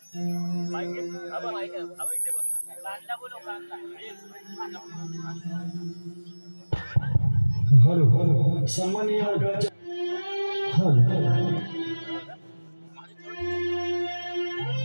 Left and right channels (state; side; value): inverted; both; correlation -1.00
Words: हॅलो सामान्य मंडळाच्या हॅलो